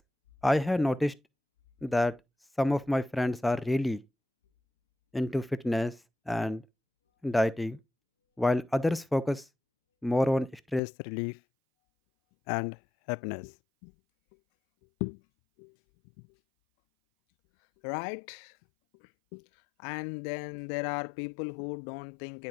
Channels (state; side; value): drops out; right; at 10.8 s